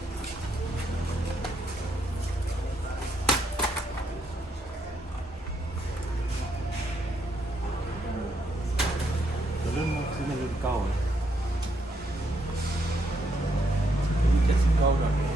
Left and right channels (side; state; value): both; normal; correlation 0.75